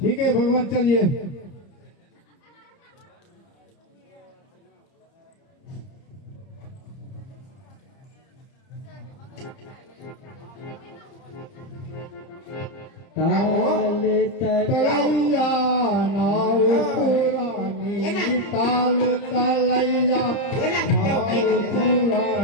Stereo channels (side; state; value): right; late; 30 ms